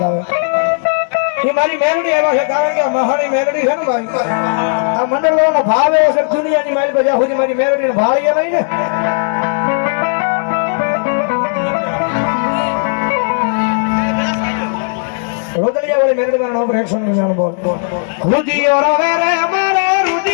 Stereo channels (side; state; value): right; silent; digital silence